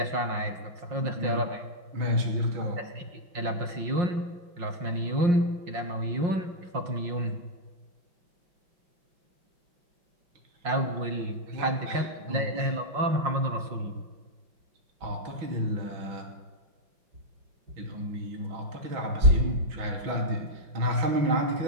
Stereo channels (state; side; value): late; left; 5.6 ms